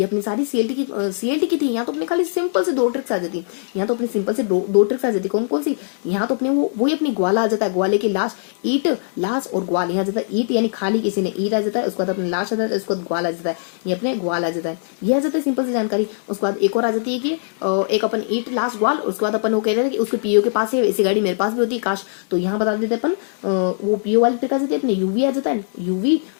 अपनी सारी CLT की थी। यहाँ तो अपने खाली सिंपल से 2 ट्रिक्स आ जाती, यहाँ तो अपनी सिंपल से दो ट्रिक्स आ जाती। कौन कौन सी, यहाँ तो अपने वही अपनी ग्वाला आ जाता है, ग्वाले के लास्ट ईट, लास्ट और ग्वाल, यहाँ जाता है ईट यानी खाली किसी ने ईट आ जाता है, उसके बाद अपने लास्ट आ जाता है, उसके बाद ग्वाल आ जाता है, ये अपने ग्वाल आ जाता है, ये आ जाता है सिंपल सी जानकारी। उसके बाद एक और आ जाती है कि एक अपन ईट लास्ट ग्वाल, उसके बाद अपन वो कह रहे थे कि उसके PO के पास है, ऐसी गाड़ी मेरे पास भी होती है काश, तो यहाँ बता देते अपन वो PO वाली ट्रिक आ जाती है, अपने UV आ जाता है, UV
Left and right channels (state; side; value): silent; right; digital silence